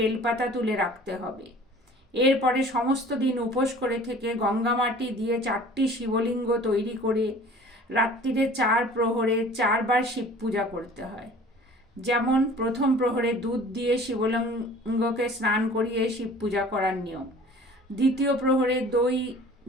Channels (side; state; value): both; normal; correlation 0.47